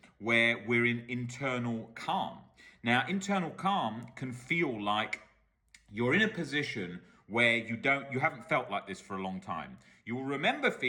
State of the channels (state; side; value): identical; both; correlation 1.00